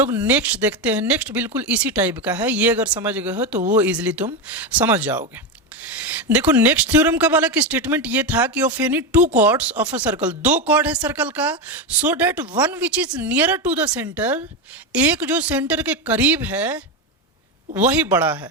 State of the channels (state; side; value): normal; both; correlation 0.12